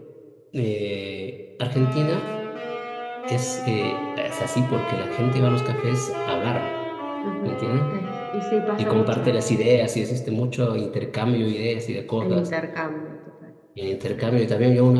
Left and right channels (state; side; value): identical; both; correlation 1.00